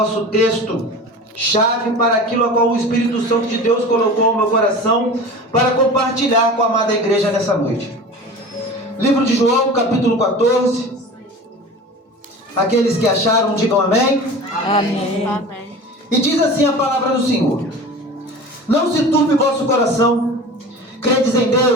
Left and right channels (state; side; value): normal; both; correlation 0.36